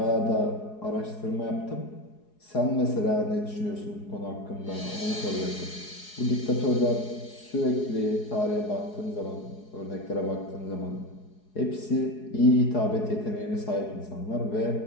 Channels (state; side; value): late; right; 4.8 ms